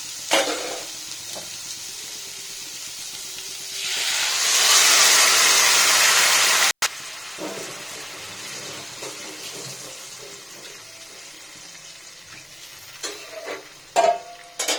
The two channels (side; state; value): both; identical; correlation 1.00